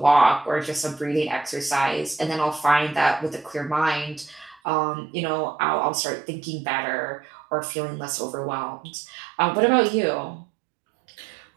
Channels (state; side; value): drops out; left; at 4.6 s